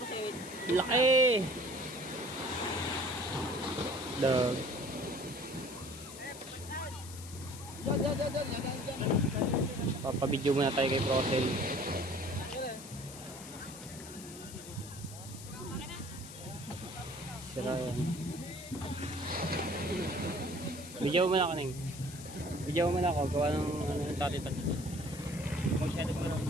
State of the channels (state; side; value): noise; left; hiss, 14 dB below the sound